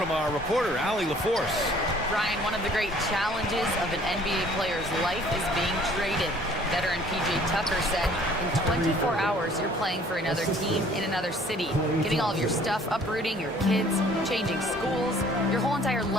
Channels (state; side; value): normal; both; correlation 0.55